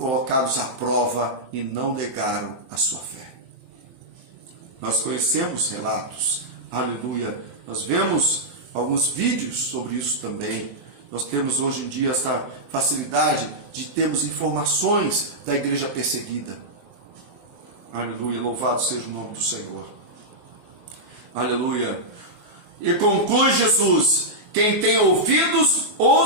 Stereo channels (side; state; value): left; late; 23 ms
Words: à prova e não negaram a sua fé. Nós conhecemos relatos, aleluia, nós vemos alguns vídeos sobre isso também. Nós temos hoje em dia essa facilidade de termos informações da igreja perseguida. Aleluia, louvado seja o nome do Senhor. Aleluia. E conclui Jesus: Quem tem ouvidos,